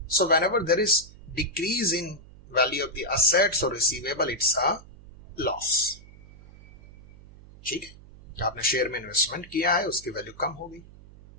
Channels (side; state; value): right; noise; hum, 20 dB below the sound